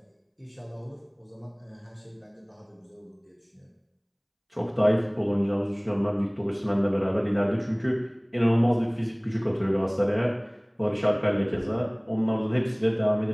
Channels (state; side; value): identical; both; correlation 1.00